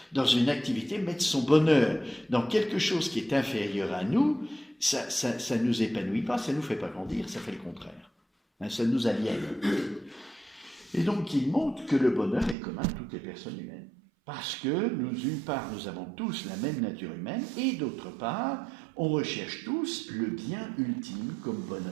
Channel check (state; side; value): drops out; left; at 12.6 s